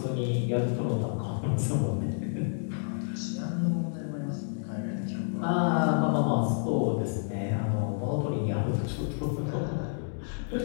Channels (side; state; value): right; silent; digital silence